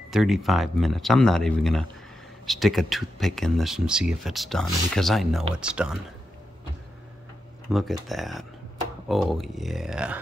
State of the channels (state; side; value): normal; both; correlation 0.87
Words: 35 minutes. I'm not even gonna stick a toothpick in this and see if it's done, because I know it's done. Look at that. Oh yeah.